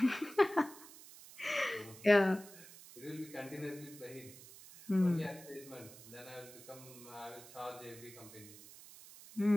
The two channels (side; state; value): right; noise; hiss, 18 dB below the sound